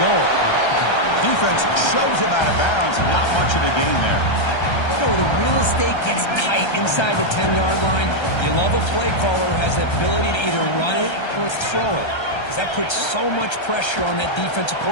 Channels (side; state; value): right; late; 1.3 ms